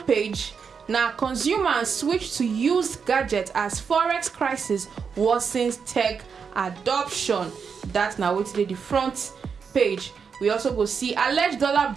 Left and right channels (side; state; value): left; quieter; 6.1 dB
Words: page now, consumers switch to used gadgets as forex crisis worsens tech adoption. That's now waiting there the front page. We also go see alleged dollar